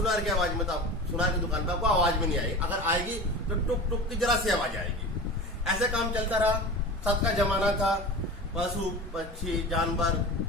की आवाज में तो सुनार की दुकान पे आपको आवाज भी नहीं आएगी, अगर आएगी तो टुक टुक की जरा सी आवाज आएगी। ऐसे काम चलता रहा। सत का जमाना था, पशु पक्षी जानवर,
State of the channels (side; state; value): both; normal; correlation 0.32